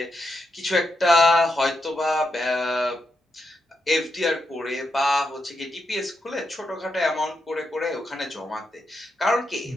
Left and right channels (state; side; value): normal; both; correlation 0.83